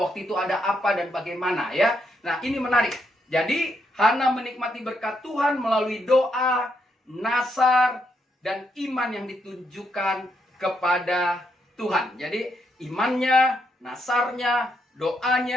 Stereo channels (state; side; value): normal; both; correlation 0.78